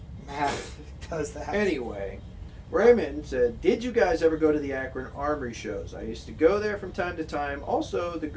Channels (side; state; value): both; identical; correlation 1.00